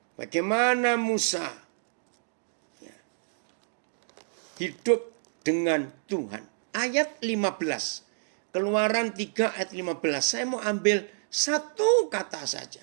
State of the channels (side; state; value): left; silent; digital silence